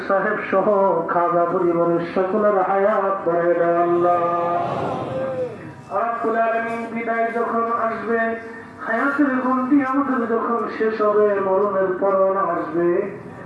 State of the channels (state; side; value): identical; both; correlation 1.00